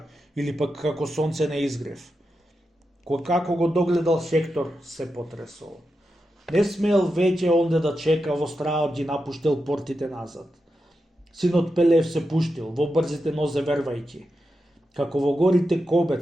или пак како сонце на изгрев. Како го догледал Хектор, се потресол. Не смел веќе онде да чека, во страот ги напуштил портите назад. Синот Пелев се пуштил, во брзите нозе вервајќи. Како во горите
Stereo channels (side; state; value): both; normal; correlation 0.89